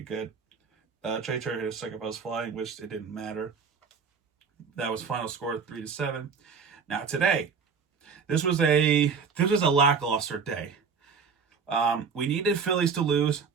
Trey Turner hit a second base fly, which it didn't matter. That was final score 3-7. Now today, this was a lackluster day. We needed Phillies to lose,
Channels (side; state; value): left; quieter; 5.7 dB